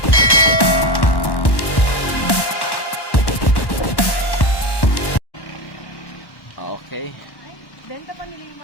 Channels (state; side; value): late; right; 1.1 ms